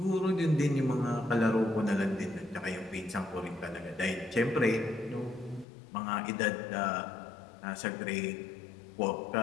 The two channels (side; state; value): right; drops out; at 5.7 s